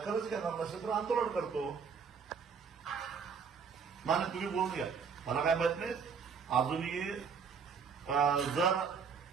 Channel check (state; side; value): quieter; left; 6.1 dB